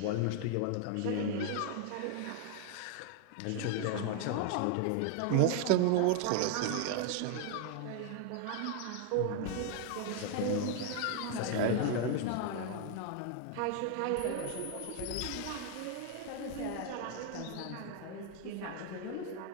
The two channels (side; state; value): both; different; correlation 0.00